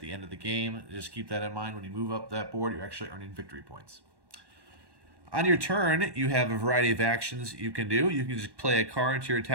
the end of the game. Just keep that in mind. When you move up that board, you're actually earning victory points. On your turn, you have a variety of actions you can do. You can just play a card to your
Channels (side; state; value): left; late; 1.1 ms